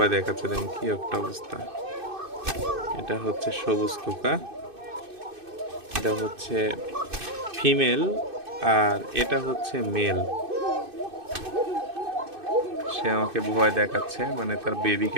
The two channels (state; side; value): late; left; 2.6 ms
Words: দেখাচ্ছে। দেখেন কি একটা অবস্থা। এটা হচ্ছে সবুজ কোকা, এটা হচ্ছে ফিমেল, আর এটা হচ্ছে মেল। সে আমাকে ভয় দেখাচ্ছে, মানে তার